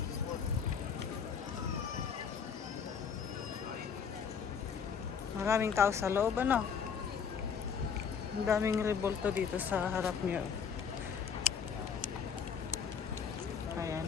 Maraming tao sa loob, ano? Ang daming rebolto dito sa harap niyo. Ayan.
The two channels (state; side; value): quieter; right; 6.7 dB